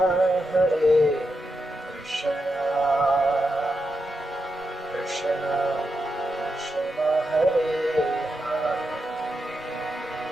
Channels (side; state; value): both; normal; correlation 0.86